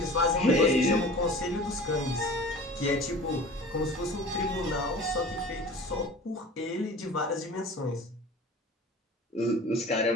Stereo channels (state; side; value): normal; both; correlation 0.41